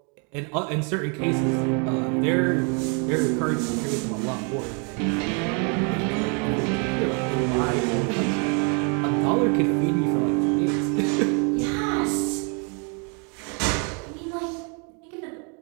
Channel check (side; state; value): left; quieter; 36.6 dB